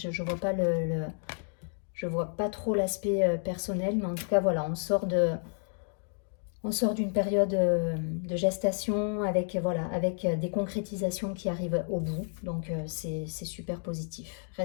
vois pas je vois pas trop l'aspect personnel, mais en tout cas voilà, on sort d'une période de gestation avec, voilà, avec des concrétisations qui arrivent au bout. Donc c'est super positif.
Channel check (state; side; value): silent; right; 57 dB below the other